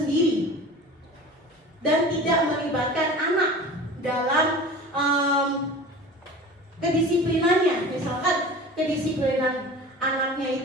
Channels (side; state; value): both; normal; correlation 0.37